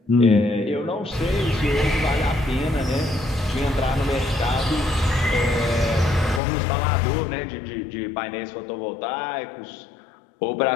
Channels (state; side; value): drops out; right; at 6.4 s